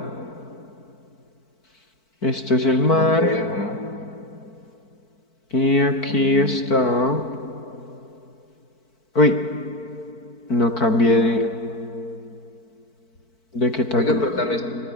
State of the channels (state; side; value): late; right; 4.5 ms